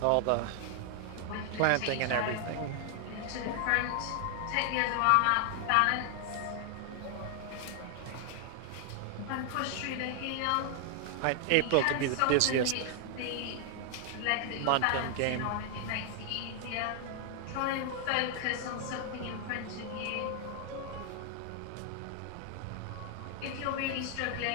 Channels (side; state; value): both; different; correlation 0.00